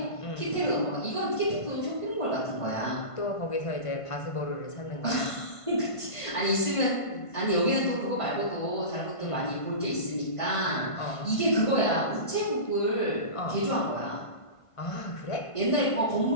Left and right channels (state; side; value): late; right; 1.5 ms